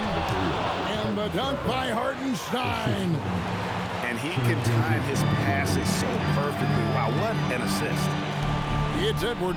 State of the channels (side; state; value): both; identical; correlation 1.00